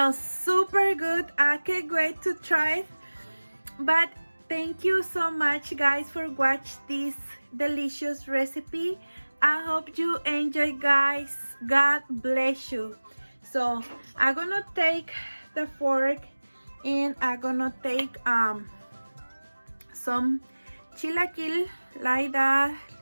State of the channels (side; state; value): both; inverted; correlation -1.00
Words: super good. I can't wait to try it. But thank you so much guys for watching this delicious recipe. I hope you enjoy guys. God bless you. So I'm gonna take the fork, and I'm gonna take some chilaquil like that